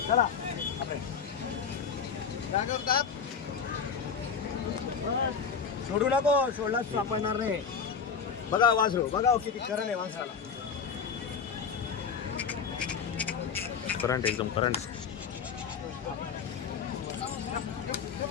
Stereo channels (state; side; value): quieter; right; 6.3 dB